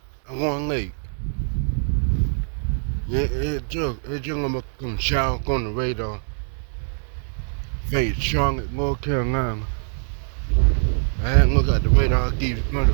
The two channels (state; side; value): silent; left; 60 dB below the other